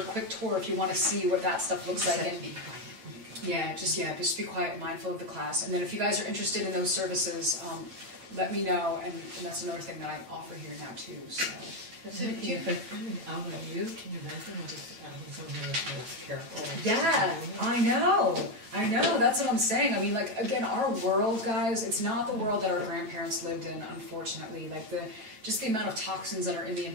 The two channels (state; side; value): late; left; 9.0 ms